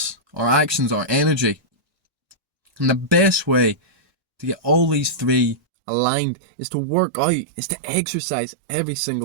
our actions, our energy. And the best way to get all these three aligned is to work out, is to exercise every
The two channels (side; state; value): left; drops out; at 5.6 s